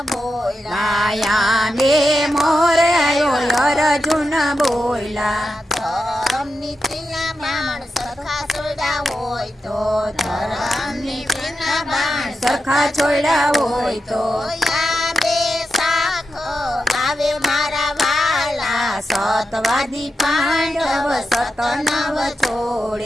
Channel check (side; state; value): both; normal; correlation 0.88